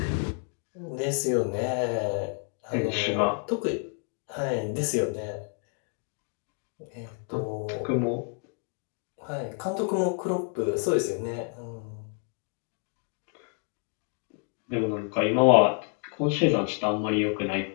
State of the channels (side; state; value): right; quieter; 38.3 dB